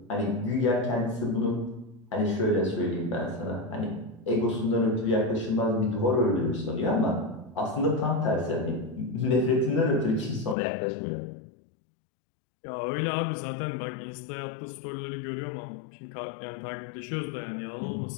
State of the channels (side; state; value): right; drops out; at 10.6 s